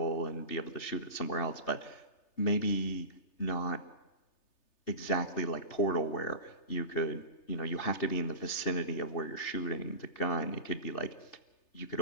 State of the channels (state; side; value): late; right; 3.3 ms